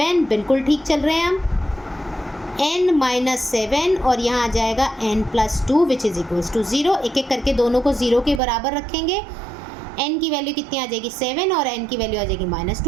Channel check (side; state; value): left; drops out; at 8.4 s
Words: बिल्कुल ठीक चल रहे हैं हम। n माइनस 7 और यहाँ आ जाएगा n plus 2 which is equals to 0। एक एक करके दोनों को 0 के बराबर रखेंगे। n की वैल्यू कितनी आ जाएगी 7 और n की वैल्यू आ जाएगी माइनस